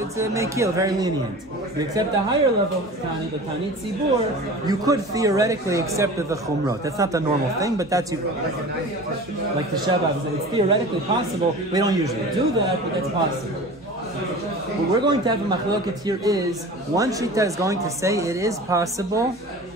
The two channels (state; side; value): normal; both; correlation 0.37